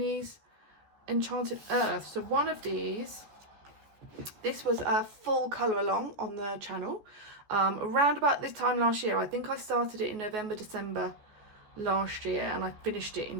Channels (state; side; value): late; left; 14 ms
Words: Enchanted Earth. So one of these, this was a full colour along on the channel. Around about this time last year. I think I started it in November, December last year, and I finished it in